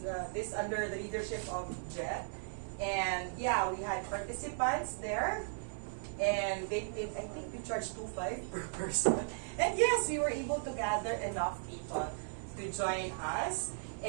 this under the leadership of Jet. And yeah, we had participants there. And I think we charged $2.5 per person. And yes, we were able to gather enough people to join us.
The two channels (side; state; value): left; silent; 53 dB below the other